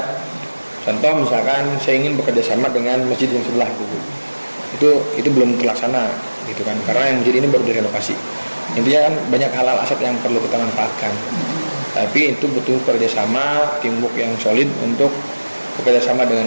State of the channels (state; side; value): inverted; both; correlation -1.00